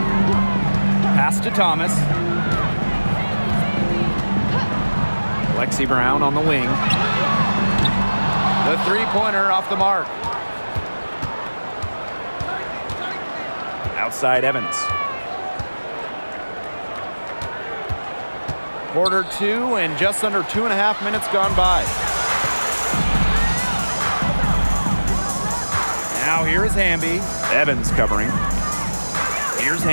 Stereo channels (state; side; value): inverted; both; correlation -1.00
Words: Pass to Thomas. Lexi Brown on the wing. The three-pointer off the mark. Outside Evans. Quarter 2 and just under 2.5 minutes gone by. Now here is Hamby. Evans covering. Here's